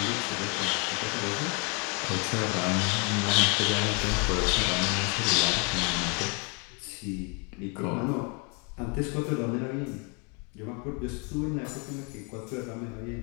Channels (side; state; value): right; quieter; 34.0 dB